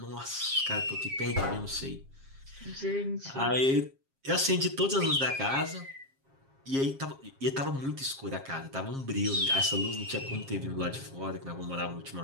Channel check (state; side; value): late; left; 7.4 ms